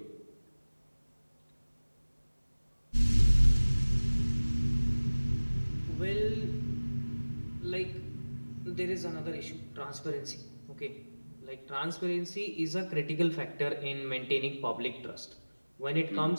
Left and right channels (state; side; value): inverted; both; correlation -1.00